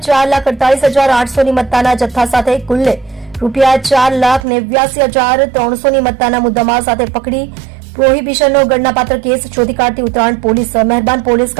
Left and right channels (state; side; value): drops out; left; at 4.5 s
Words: ની મત્તાના જથ્થા સાથે કુલ્લે ₹4,89,300 ની મત્તાના મુદ્દામાલ સાથે પકડી પ્રોહિબિશનનો ગણનાપાત્ર કેસ શોધી કાઢતી ઉત્તરાયણ પોલીસ મહેરબાન પોલીસ